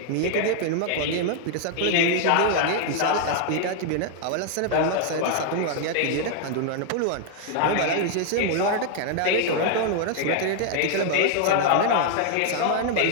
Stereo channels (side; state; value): both; different; correlation 0.00